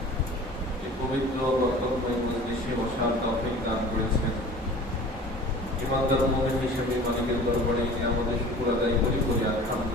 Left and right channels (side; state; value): both; normal; correlation 0.43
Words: এই পবিত্র বরকতময় মজলিসে বসার তৌফিক দান করেছেন। ইমানদার মুমিন হিসেবে মালিকের দরবারে আমাদের শুকর আদায় করি